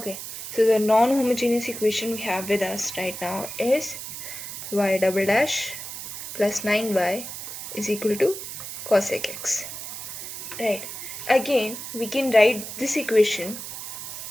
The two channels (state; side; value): noise; right; hiss, 8 dB below the sound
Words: so the non-homogeneous equation we have with us right now is y double dash plus 9y is equal to cosec x. Right, again we can write this equation